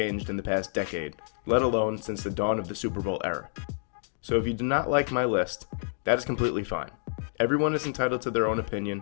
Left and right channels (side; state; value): right; silent; digital silence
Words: in the past decade, let alone since the dawn of the Super Bowl era. So if you do not like my list, that is completely fine. Everyone is entitled to their own